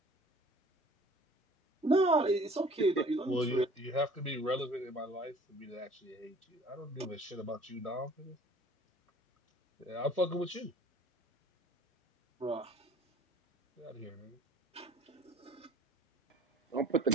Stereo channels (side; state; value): both; normal; correlation 0.52